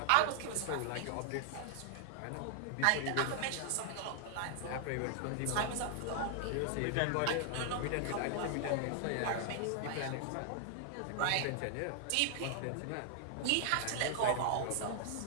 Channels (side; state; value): both; different; correlation 0.00